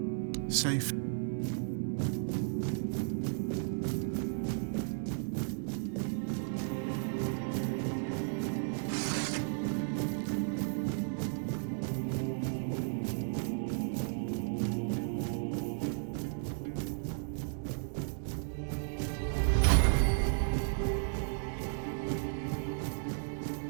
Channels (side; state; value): left; silent; digital silence